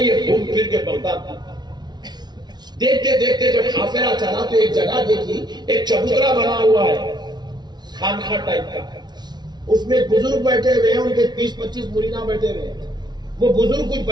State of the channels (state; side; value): late; left; 0.20 ms